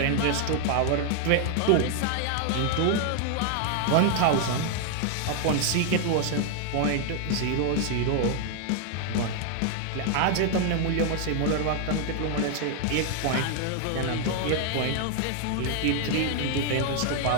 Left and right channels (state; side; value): different; both; correlation 0.00